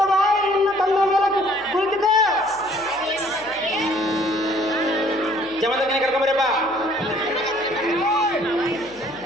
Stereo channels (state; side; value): noise; left; hum, 28 dB below the sound